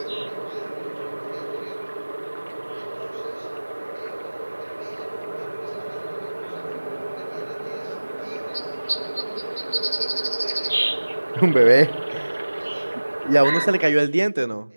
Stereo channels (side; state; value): both; inverted; correlation -1.00